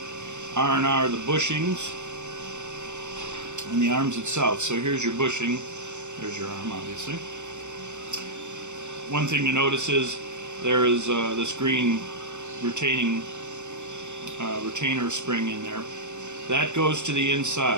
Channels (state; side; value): late; left; 0.84 ms